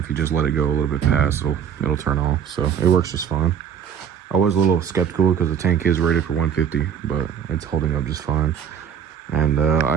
you just let it go a little bit past, it'll turn off. So it works just fine. I was a little skeptical because the tank is rated for 150, but it's holding up just fine. And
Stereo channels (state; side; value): quieter; left; 8.2 dB